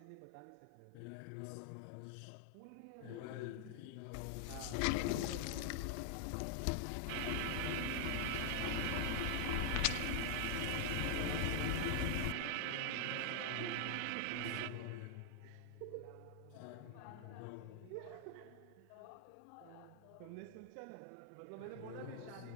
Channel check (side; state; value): both; different; correlation 0.00